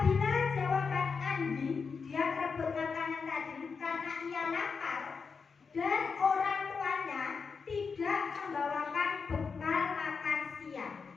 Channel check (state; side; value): quieter; right; 5.3 dB